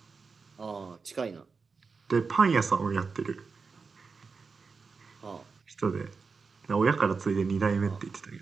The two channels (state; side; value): quieter; left; 4.8 dB